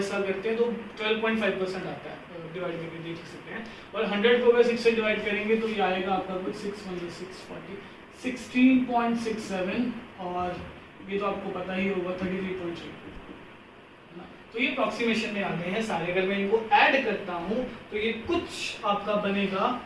करते हैं तो 12.5% आता है, डिवाइड करके देख सकते हैं। और 100 को अगर 6 से डिवाइड करेंगे तो ये आएगा आपका कुछ 6 16.67, और ये तो आपको पता ही होगा 33.3, तो ये अप्रोक्सीमेशन में आ गए हैं सारे। अगर मैं इनको ऐड करता हूं तो ये कुछ आपका बनेगा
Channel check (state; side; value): identical; both; correlation 1.00